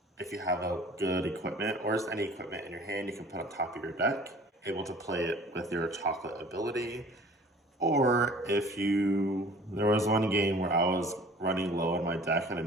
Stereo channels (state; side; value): normal; both; correlation 0.48